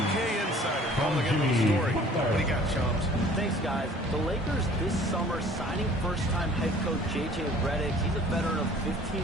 insider calling in the story. What do you got, Shams? Thanks, guys. The Lakers this summer signing first-time head coach J.J. Redick. He's a veteran of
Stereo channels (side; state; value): both; normal; correlation 0.51